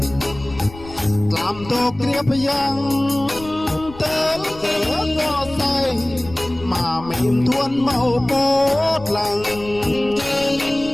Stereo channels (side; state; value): left; noise; rumble, 17 dB below the sound